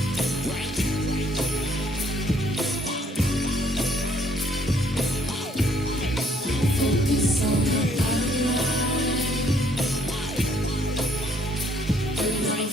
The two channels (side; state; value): both; normal; correlation 0.65